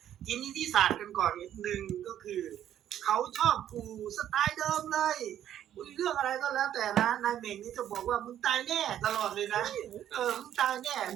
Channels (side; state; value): left; quieter; 10.9 dB